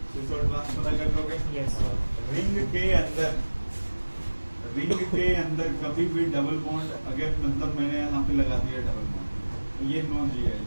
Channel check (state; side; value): inverted; both; correlation -1.00